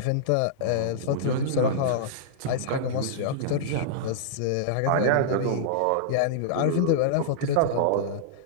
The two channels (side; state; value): both; different; correlation -0.02